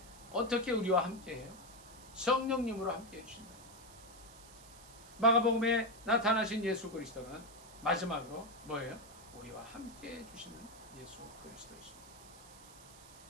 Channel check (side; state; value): right; noise; hiss, 20 dB below the sound